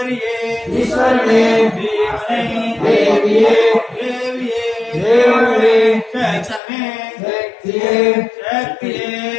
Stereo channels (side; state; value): right; drops out; at 6.6 s